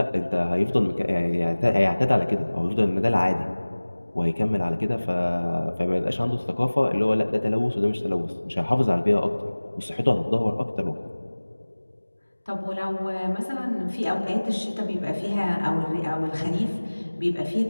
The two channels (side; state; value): both; inverted; correlation -1.00